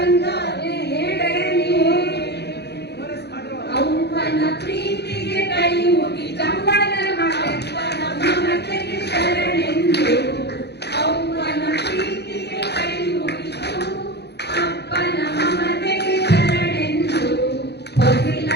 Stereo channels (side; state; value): right; late; 0.48 ms